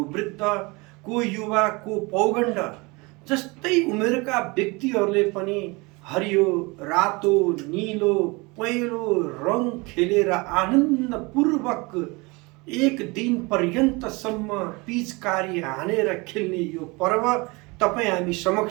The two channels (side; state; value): left; quieter; 26.0 dB